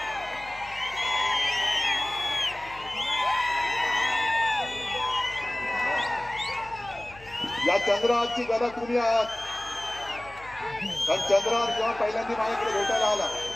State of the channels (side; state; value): left; noise; hum, 21 dB below the sound